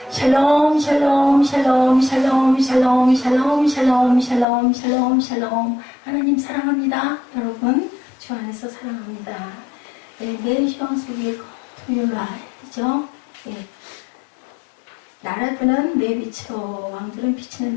샬롬 샬롬 샬롬 샬롬 샬롬 샬롬 샬롬 샬롬 샬롬 샬롬. 하나님 사랑합니다. 여러분 주 안에서 사랑합니다. 네이션 속의 토요일이죠. 나라들은 내 빛으로 왕들은 비치는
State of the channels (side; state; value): right; drops out; at 4.5 s